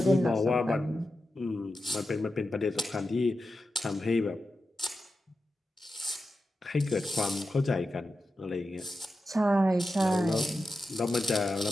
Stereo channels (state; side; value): normal; both; correlation 0.90